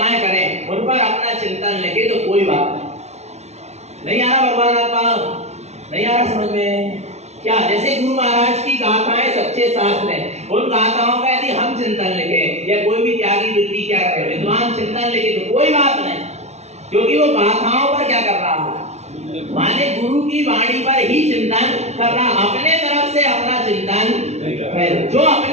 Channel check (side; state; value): left; late; 0.32 ms